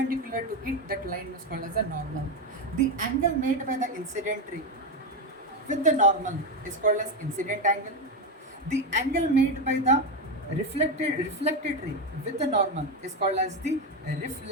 to it, that line is called as a normal. The angle made by the incident ray with the normal is called as incident angle. The angle made by the reflected ray with the normal is called as the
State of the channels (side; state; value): both; normal; correlation 0.11